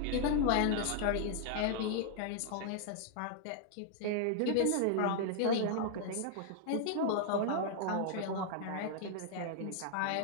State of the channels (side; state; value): both; different; correlation 0.00